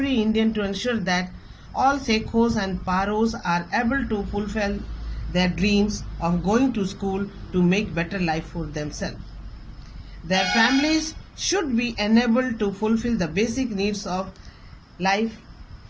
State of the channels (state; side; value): identical; both; correlation 1.00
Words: Indian to ensure that all Sekhos and Paros are able to fulfill their dreams of going to school to make better life for themselves. Their families should be enabled to fulfill the basic needs of life,